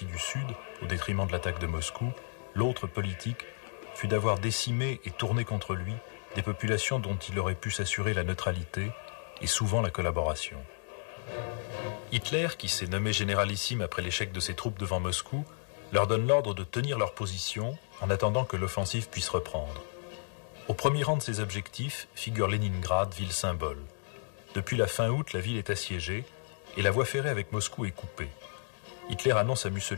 du Sud, au détriment de l'attaque de Moscou. L'autre, politique, fut d'avoir décimé et tourné contre lui des populations dont il aurait pu s'assurer la neutralité et souvent la collaboration. Hitler, qui s'est nommé généralissime après l'échec de ses troupes devant Moscou, leur donne l'ordre de tenir leur position en attendant que l'offensive puisse reprendre. Au premier rang de ses objectifs figure Leningrad, ville symbole. Depuis la fin août, la ville est assiégée et la voie ferrée avec Moscou est coupée. Hitler annonce à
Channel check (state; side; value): silent; right; 56 dB below the other